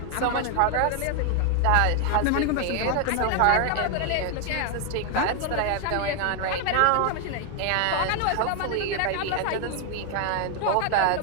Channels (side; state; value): both; different; correlation 0.01